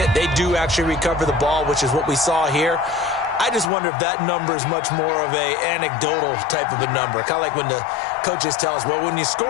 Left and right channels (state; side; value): drops out; right; at 3.7 s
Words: they do actually recover the ball, which is what we saw here. I just wonder if that number is much more of a anecdotal type of a number. Kind of like when the coaches tell us, well, when you